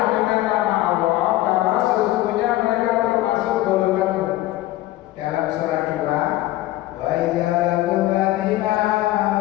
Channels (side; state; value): right; quieter; 16.2 dB